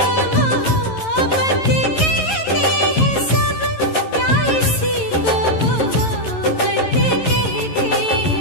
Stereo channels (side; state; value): right; late; 11 ms